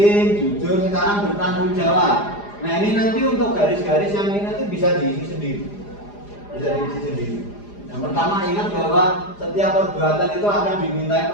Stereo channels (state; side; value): late; right; 4.9 ms